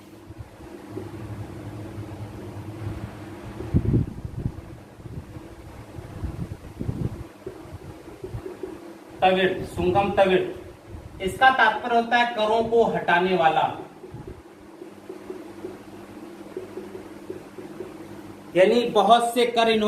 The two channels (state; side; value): identical; both; correlation 1.00